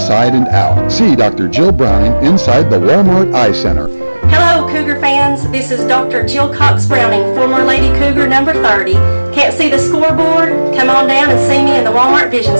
and out. See Dr. Jill Browning inside the Walmart Eye Center. Hello, Cougar fans. This is Dr. Jill Cox Browning, former Lady Cougar number 30. Can't see the scoreboard? Come on down and see me in the Walmart Vision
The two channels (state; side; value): inverted; both; correlation -1.00